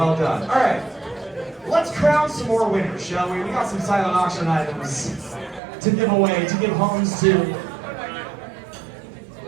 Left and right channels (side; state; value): left; drops out; at 5.6 s